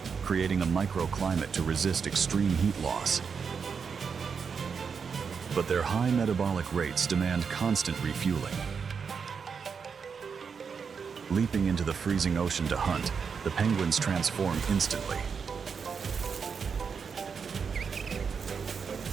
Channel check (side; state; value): left; quieter; 6.0 dB